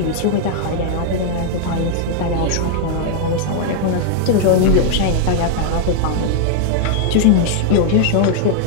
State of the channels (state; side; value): different; both; correlation -0.01